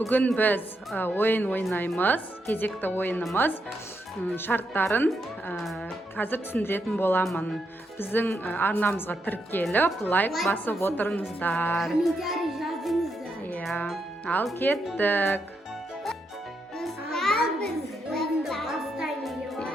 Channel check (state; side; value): normal; both; correlation 0.81